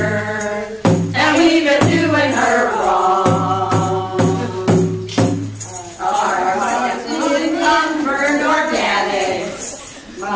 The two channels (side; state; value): both; identical; correlation 1.00